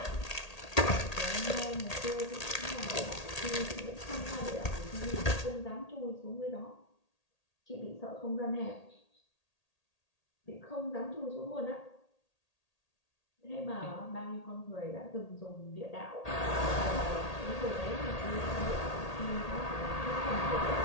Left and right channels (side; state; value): right; late; 1.8 ms